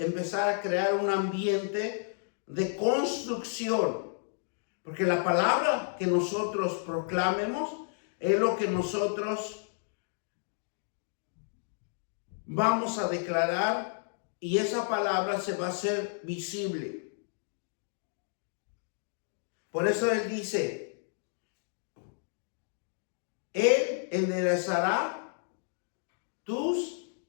a crear un ambiente de construcción, porque la palabra que nosotros proclamemos es lo que nosotros vamos a declarar, y esa palabra se va a hacer visible. Por eso Él dice: Él enderezará tus,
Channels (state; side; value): silent; right; digital silence